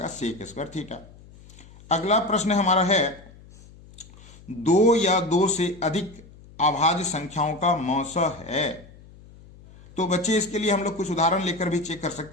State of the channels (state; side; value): noise; left; hum, 22 dB below the sound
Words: सेक स्क्वायर थीटा। अगला प्रश्न हमारा है 2 या 2 से अधिक अभाज्य संख्याओं का मौसा है। तो बच्चे इसके लिए हम लोग कुछ उदाहरण लेकर भी चेक कर